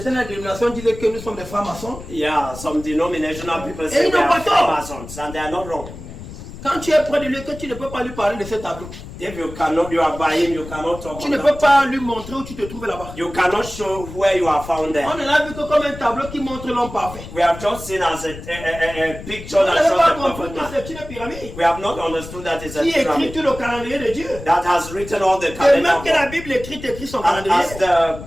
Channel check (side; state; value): left; noise; rumble, 13 dB below the sound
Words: dénominations disaient que nous sommes des francs-maçons. Yeah, some denominational people Et say ils we n'ont are pas tort. Masons, and they are not wrong. Quand tu es près de lui, que tu ne peux pas lui parler de ce tableau. If you are by him, you cannot talk Tu ne peux about pas lui montrer où tu te trouves là-bas. You cannot show where you are found there. On ne l'a vu que comme un tableau qui montre l'homme parfait. We have just seen as a picture On that n'avait shows pas the compris perfect que man. c'est une pyramide We have not understood that it's a qui écrit pyramid tout le calendrier de Dieu. that has written all the De calendar. même que la of God. Bible écrit son And calendrier. as the